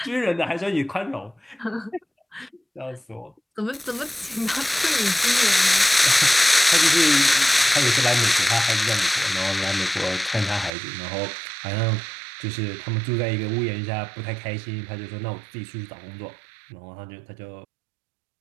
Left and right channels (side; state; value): left; drops out; at 10.7 s